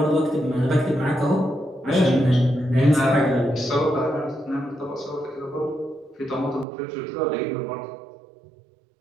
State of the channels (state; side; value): drops out; left; at 6.7 s